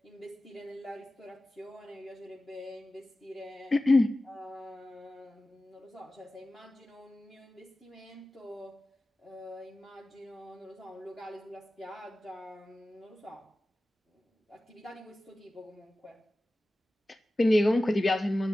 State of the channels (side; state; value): both; normal; correlation 0.96